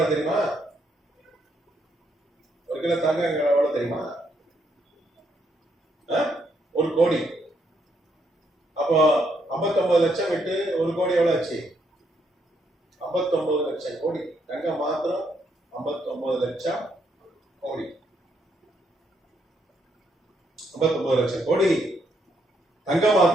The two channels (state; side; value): normal; both; correlation 0.75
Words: தெரியுமா? 59 லட்சம் கோடி. தங்கம் மாத்திரம் 59 லட்சம் கோடி. 59 லட்சம் கோடி தங்கம்